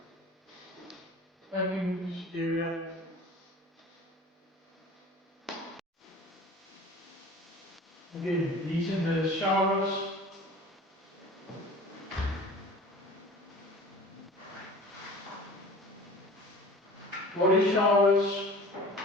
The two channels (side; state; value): both; normal; correlation 0.41